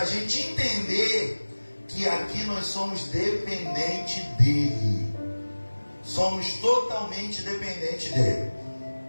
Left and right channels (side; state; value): both; inverted; correlation -1.00